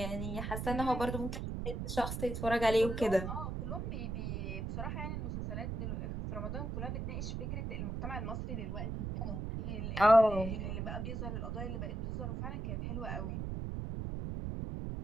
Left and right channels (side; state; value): right; noise; rumble, 3 dB below the sound